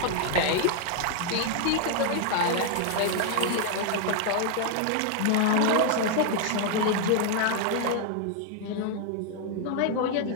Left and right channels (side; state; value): both; different; correlation 0.00